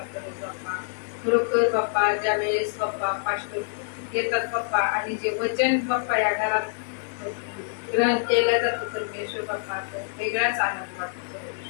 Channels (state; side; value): silent; right; digital silence